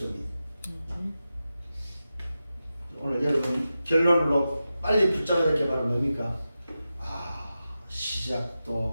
오늘 여러분 결론으로 빨리 붙잡아야 될 게 바로 뭡니까?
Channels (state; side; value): inverted; both; correlation -0.92